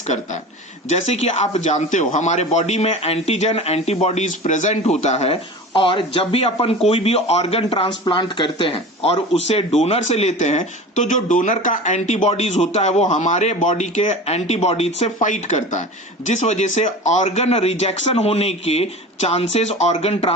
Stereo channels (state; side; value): normal; both; correlation 0.35